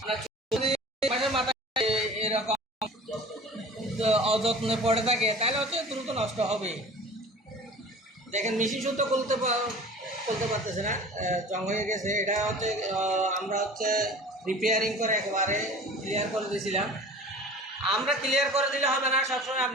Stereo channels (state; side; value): normal; both; correlation 0.41